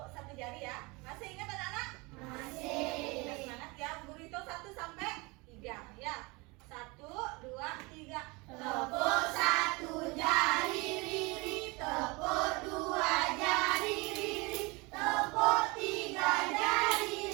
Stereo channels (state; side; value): quieter; left; 26.0 dB